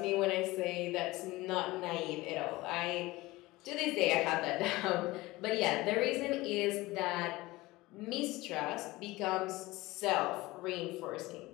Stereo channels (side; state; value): right; quieter; 20.0 dB